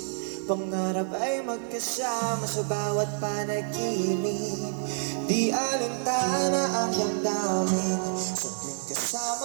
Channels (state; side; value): silent; left; 59 dB below the other